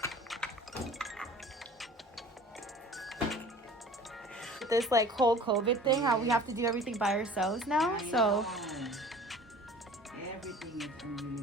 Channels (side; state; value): both; normal; correlation 0.45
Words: this like whole COVID thing, how we have to do everything by ourselves now. So everything is